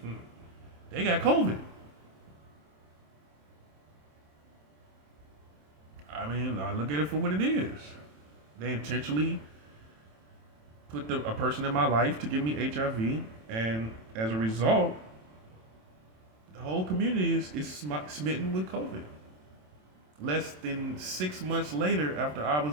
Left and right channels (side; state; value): left; late; 27 ms